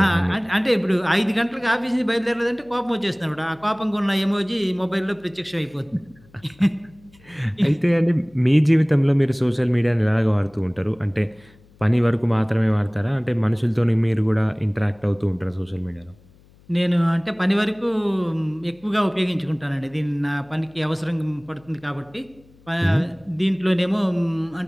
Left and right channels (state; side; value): noise; left; hum, 28 dB below the sound